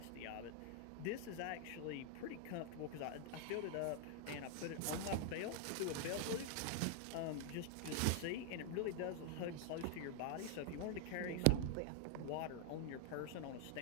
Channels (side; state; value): both; different; correlation 0.00